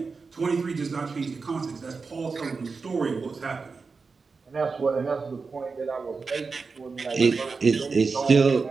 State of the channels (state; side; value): quieter; left; 4.6 dB